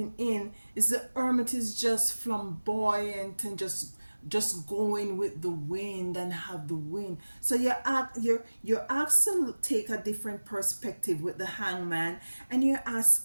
in, the Hermit is just flamboyant and just just going with the wind and have the wind. So you're asked to take a different perspective with the hangman, and you're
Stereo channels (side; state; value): both; inverted; correlation -1.00